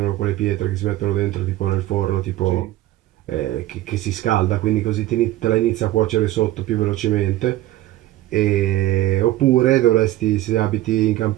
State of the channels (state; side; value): quieter; left; 15.5 dB